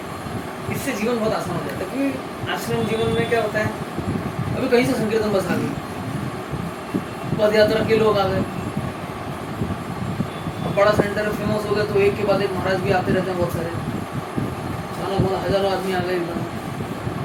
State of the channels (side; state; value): both; identical; correlation 1.00